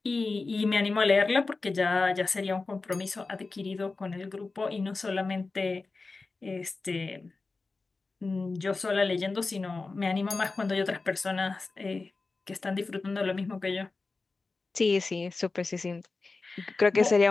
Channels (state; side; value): quieter; right; 3.8 dB